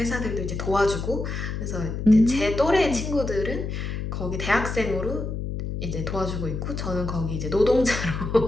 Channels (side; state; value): left; noise; hum, 4 dB below the sound